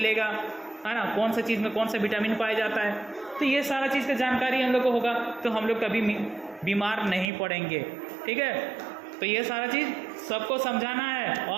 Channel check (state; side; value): drops out; left; at 7.2 s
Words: है ना, कौन सा चीज़ में कौन सा विटामिन पाया जाता है। तो ये सारा चीज़ का जानकारी हम लोग को होगा तो हम लोग कभी बीमार नहीं पड़ेंगे, ठीक है? तो ये सारा चीज़ सबको समझाना है